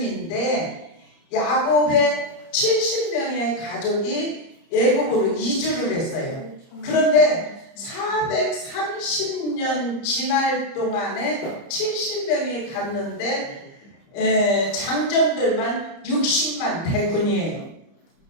야곱의 70명의 가족이 애굽으로 이주를 했어요. 그런데 430년 지날 동안에 70명이 갔는데 장정들만 60만 대군이에요.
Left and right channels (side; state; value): right; late; 30 ms